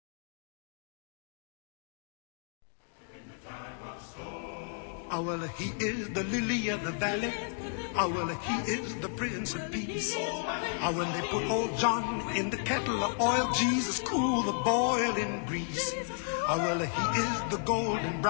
Oh, well, he is the lily of the valley. Oh, well, he is the Prince of Peace. Oh, when they put old John in the kettle of oil, Jesus cool the boiling grease. Oh, well, he is the golden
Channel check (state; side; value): silent; right; 55 dB below the other